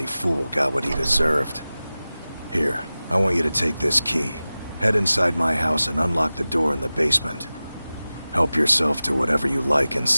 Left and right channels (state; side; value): inverted; both; correlation -0.97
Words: fool got what he deserved. Here, I want you to take this key. Head inside my house and unlock the door in the basement. Help yourself to whatever you like